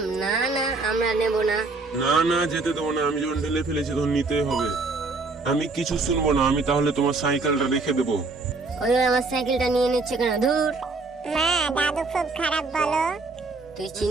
না না, আমরা নেব না। না না, যেতে দেবো না। আমি যখন ঢেলে ফেলেছি তখন নিতেই হবে। আমি কিছু শুনবো না। আমি তাহলে তোমার সাইকেলটা রেখে দেবো। ওই আমার সাইকেলটা নিয়ে নিচ্ছে কেন? ধুর, মা, দাদু খুব খারাপ বলো। তুই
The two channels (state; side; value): quieter; left; 3.7 dB